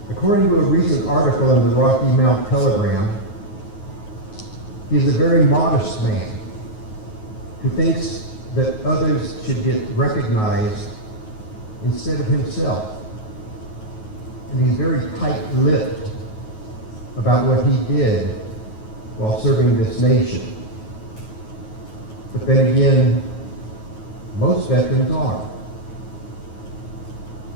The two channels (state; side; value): late; right; 9.4 ms